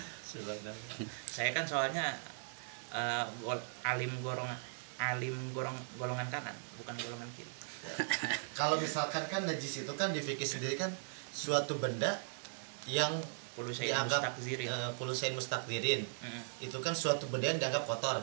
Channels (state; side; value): silent; left; 52 dB below the other